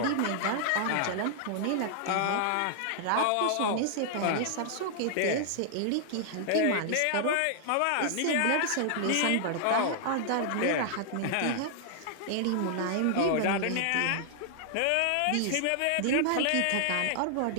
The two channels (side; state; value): both; different; correlation -0.01